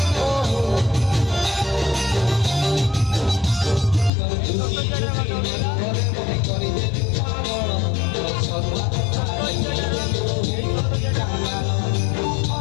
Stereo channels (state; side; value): drops out; right; at 4.1 s